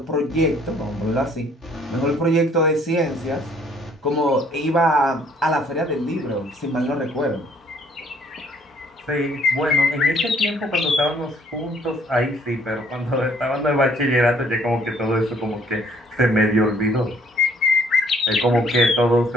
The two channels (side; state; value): both; normal; correlation 0.62